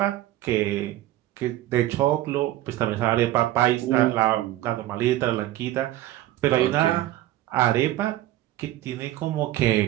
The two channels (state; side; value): quieter; left; 14.7 dB